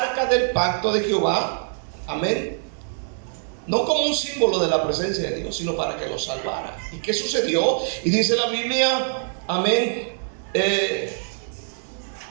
del pacto de Jehová. Amén. No como un símbolo de la presencia de Dios, sino para que los salvara. ¿Y qué sucedió? Y dice la Biblia, amén,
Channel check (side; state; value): left; silent; digital silence